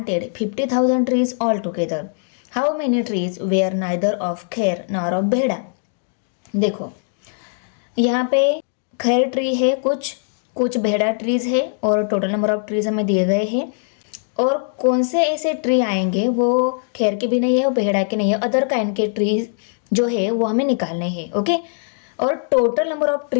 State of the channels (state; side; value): silent; right; digital silence